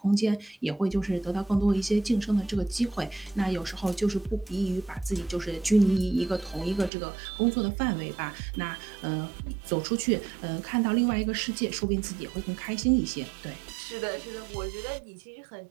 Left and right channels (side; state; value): left; drops out; at 6.9 s